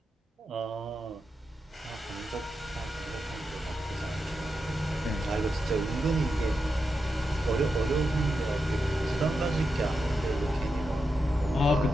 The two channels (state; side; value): normal; both; correlation 0.87